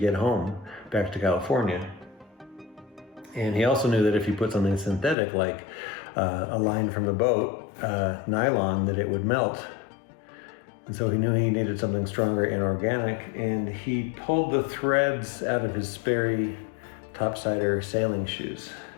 home back to California. And he also knew that if you put something synthetic like a line from the boat, nylon, that it would melt. And so he knew he needed something stronger and organic, and he pulled the threads out of his Sperry topsider sailing shoes.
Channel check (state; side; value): drops out; right; at 5.2 s